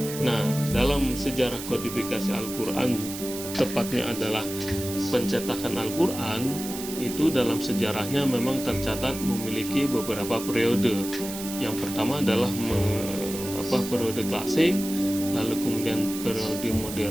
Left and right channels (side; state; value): right; noise; hiss, 9 dB below the sound